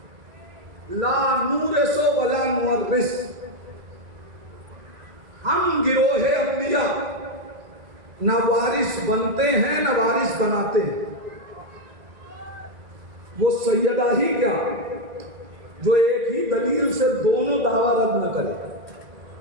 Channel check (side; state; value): left; late; 2.0 ms